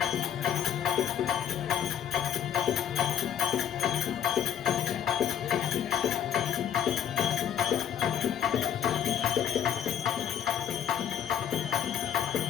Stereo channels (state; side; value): quieter; right; 9.3 dB